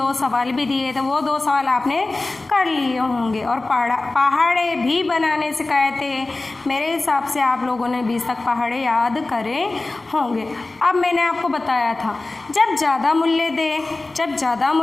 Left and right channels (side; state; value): right; quieter; 3.1 dB